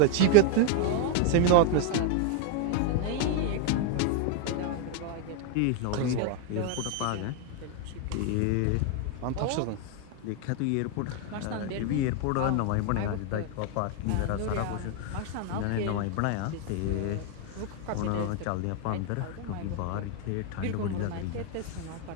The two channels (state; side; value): different; both; correlation 0.01